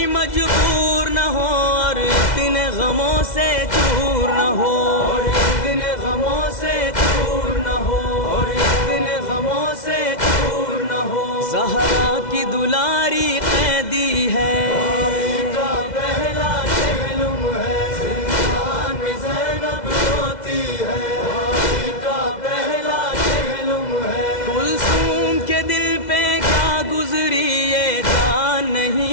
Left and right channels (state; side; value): late; right; 2.0 ms